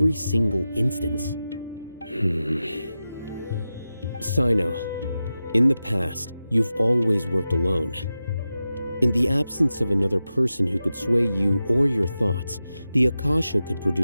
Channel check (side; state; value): both; inverted; correlation -0.92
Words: single instance? Sino, in the past, you've always worked alone. In the absence of another person who could sway you or your thoughts, the Akasha could